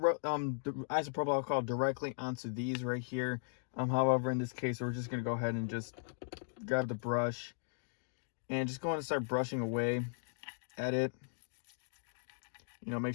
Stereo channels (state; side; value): silent; right; digital silence